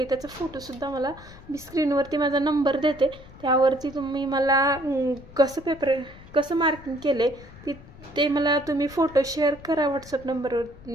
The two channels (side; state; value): left; noise; rumble, 19 dB below the sound